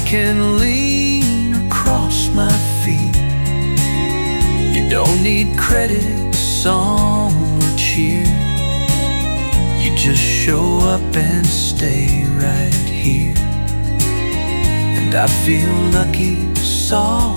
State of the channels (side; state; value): both; inverted; correlation -1.00